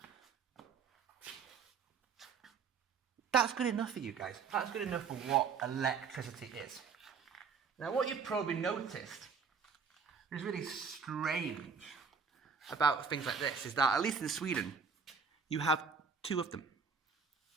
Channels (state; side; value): quieter; left; 5.9 dB